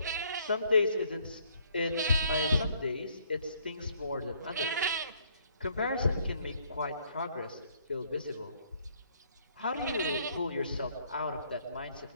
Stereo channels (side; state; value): both; inverted; correlation -0.66